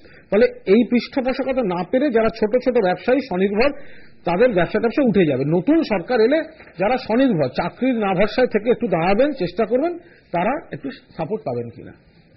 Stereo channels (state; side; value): identical; both; correlation 1.00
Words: ফলে এই পৃষ্ঠপোষকতা না পেরে যারা ছোট ছোট ব্যবসায়ী স্বনির্ভর, তাদের ব্যবসা উঠে যাবে। নতুন সরকার এলে যারা স্বনির্ভর, চাকরির না ভরসায় থেকে একটু দাঁড়াবেন, চেষ্টা করবেন, তারা একটু সাপোর্ট পাবেন কিনা।